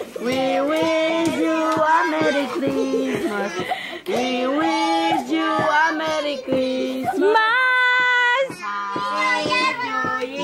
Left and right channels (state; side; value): identical; both; correlation 1.00